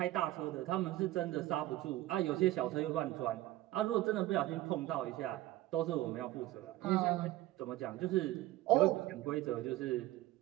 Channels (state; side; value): quieter; left; 16.3 dB